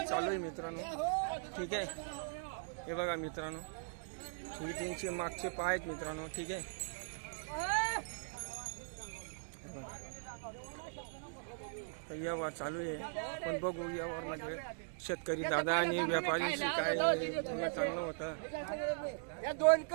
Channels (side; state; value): left; silent; digital silence